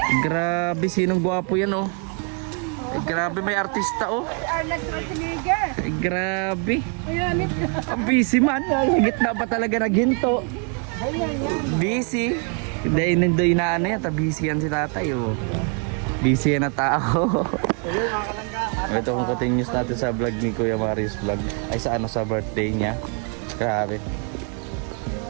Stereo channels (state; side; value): quieter; left; 38.3 dB